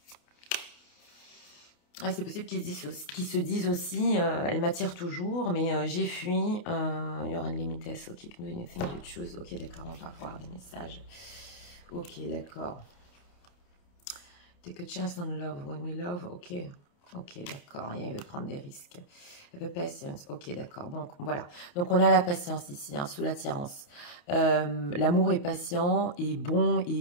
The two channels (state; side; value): late; right; 29 ms